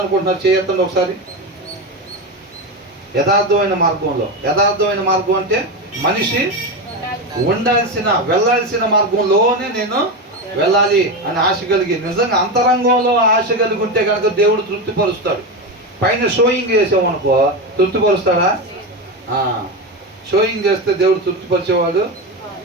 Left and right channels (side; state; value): both; normal; correlation 0.16